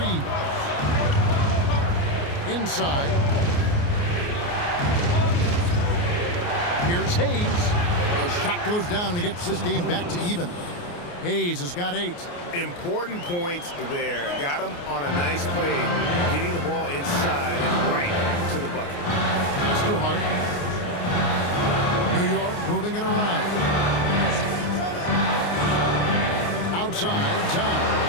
Inside. Here's Hayes. The shot goes down and it gets this game back to even. Hayes has got 8. Important points there. Got him on a nice play, getting the ball inside and right to the bucket. It's too hard. New York moving it around. Outside,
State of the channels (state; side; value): late; right; 29 ms